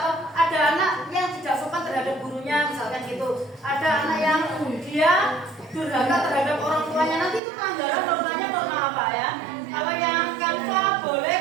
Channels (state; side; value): drops out; left; at 7.4 s